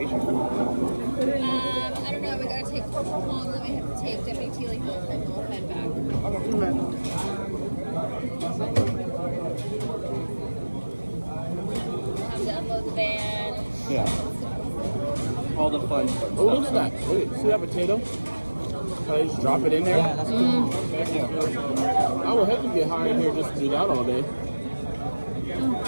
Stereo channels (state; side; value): inverted; both; correlation -1.00